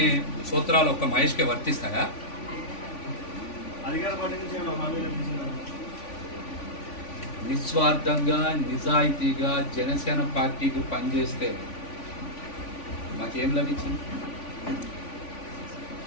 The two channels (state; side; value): late; right; 3.5 ms